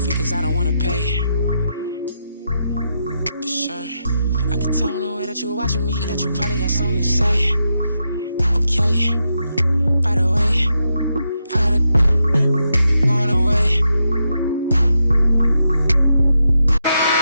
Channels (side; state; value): both; inverted; correlation -0.84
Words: cause I don't wanna pay. For sure, I can tell in the way that you're watching me that you probably got something to say. Okay, by the way, I gotta going away.